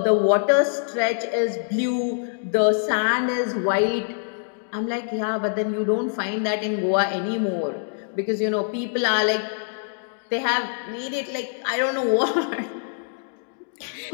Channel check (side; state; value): right; silent; digital silence